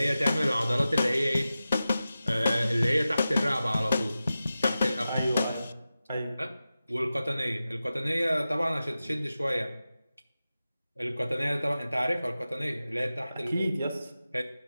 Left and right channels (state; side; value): inverted; both; correlation -0.94